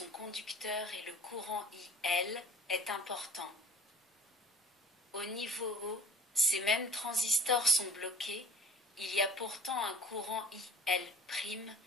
conducteurs et le courant IL est important. Au niveau haut, ces mêmes transistors sont bloqués, il y a pourtant un courant IL',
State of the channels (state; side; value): normal; both; correlation 0.44